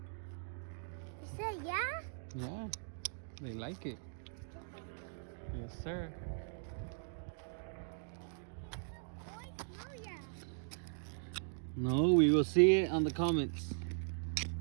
You said yeah? Yeah, they like it. Yes, sir. Oh, yeah. No, we will see it on the comments.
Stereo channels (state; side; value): silent; left; digital silence